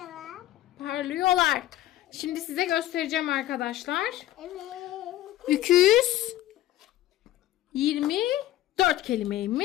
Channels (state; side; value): quieter; right; 14.4 dB